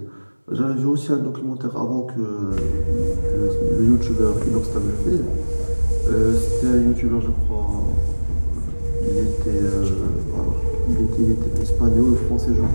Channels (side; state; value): both; inverted; correlation -1.00